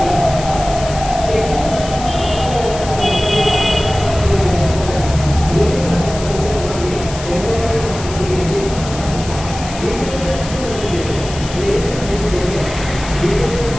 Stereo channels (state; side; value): noise; left; hiss, 12 dB below the sound